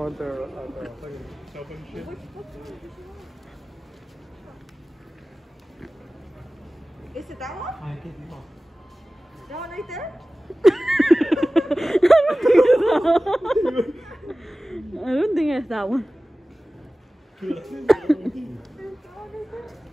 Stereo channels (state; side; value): normal; both; correlation 0.97